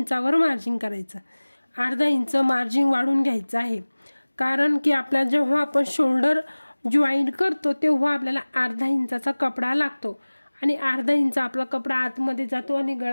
मार्जिन करायचं। 1/2 इंच मार्जिन वाढून घ्यायचं आहे कारण की आपल्या जेव्हा आपण शोल्डर जॉईंट करतो तेव्हा आपल्याला 1/2 इंचाचा कपडा लागतो आणि 1/2 इंच आपला कपडा आतमध्ये जातो आणि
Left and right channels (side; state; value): both; inverted; correlation -1.00